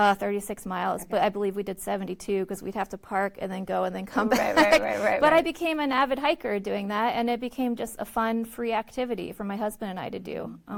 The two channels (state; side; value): identical; both; correlation 1.00